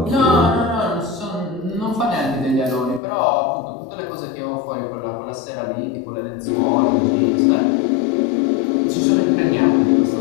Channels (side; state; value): right; drops out; at 3.0 s